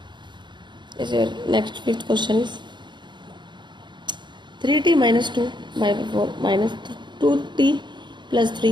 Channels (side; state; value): left; late; 0.22 ms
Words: Next fifth question is 3t minus 2/4 minus 2t plus